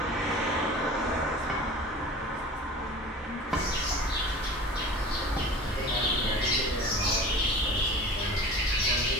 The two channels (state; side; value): normal; both; correlation 0.39